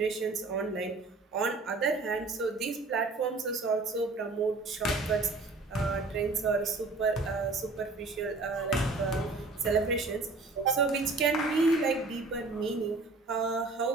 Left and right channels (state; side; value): quieter; left; 3.5 dB